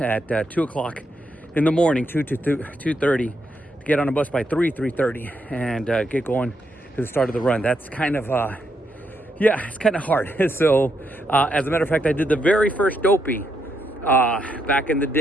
2 o'clock in the morning, 2 to 2:30, to get on a bus by 3:30, and get going to the start of the run. That's kind of, it's kind of hard. So, as a matter of fact, I did the very first dopey back in the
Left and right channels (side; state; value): both; normal; correlation 0.79